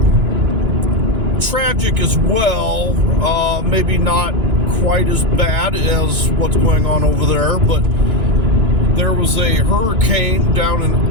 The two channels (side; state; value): left; late; 2.9 ms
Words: tragic as well, maybe not quite as bad as what's going on over there, but there was a hurricane down in